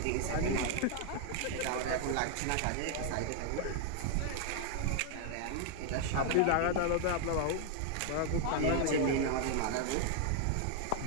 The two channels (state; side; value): different; both; correlation 0.00